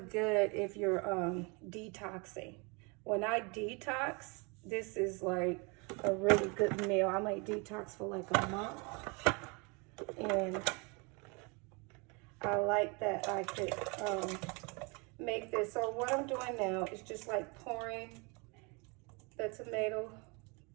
if you're detoxing. When I detox, this is like a really good meal. I might detox for like a month, and I like that I could make this. So what I'm doing now is just like pouring the tomato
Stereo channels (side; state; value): left; quieter; 30.6 dB